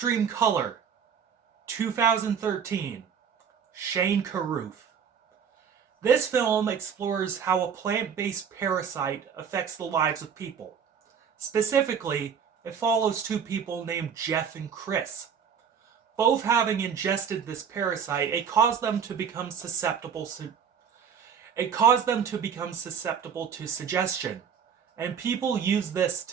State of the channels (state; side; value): quieter; left; 7.3 dB